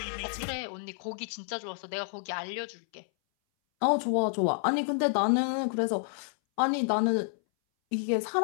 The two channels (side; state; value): right; silent; 58 dB below the other